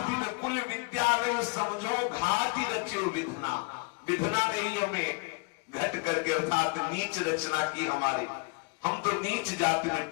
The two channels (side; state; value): right; quieter; 31.3 dB